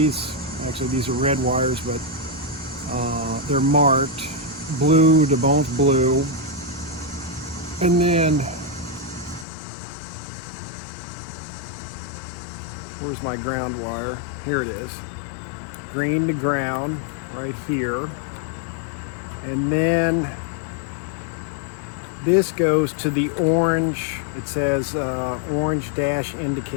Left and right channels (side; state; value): right; drops out; at 9.5 s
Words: are red wires, but they're marked blue to both blue. And then, where's my ground wire? Here it is. Green to ground, right here. And then this goes to the orange, it says orange dash